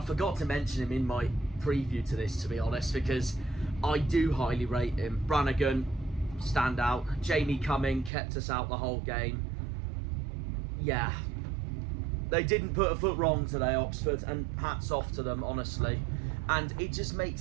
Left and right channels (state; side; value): drops out; left; at 8.1 s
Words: to mention him in my preview to this, to be honest, because I do highly rate him. Brannigan, standout. Jamie Cumming kept us out the whole game. Yeah, they didn't put a foot wrong today, Oxford, and hats off to them, honestly. And it just